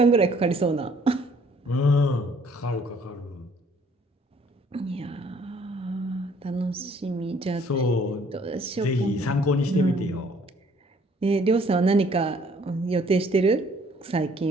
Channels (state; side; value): normal; both; correlation 0.60